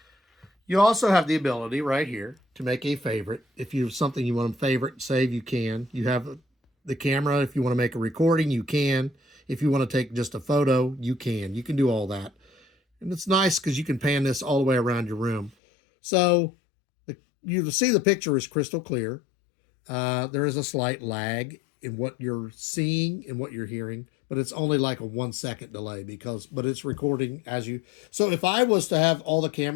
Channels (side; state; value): right; drops out; at 15.5 s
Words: You also have the ability right here to make a favorite. If you have something you want to favorite, save, you can. You have the camera. If you want to make a recording, you can. If you want to take just a photo, you can. You can do all that. And it's nice because you can pan this all the way around your room. So you see the picture is crystal clear. There is a slight lag in what you're seeing and what you're hearing, but it's only like a 1 second delay but it's recording as you. So if I was to have all the